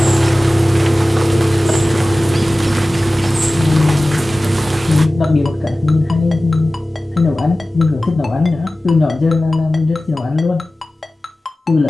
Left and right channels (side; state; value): both; normal; correlation 0.96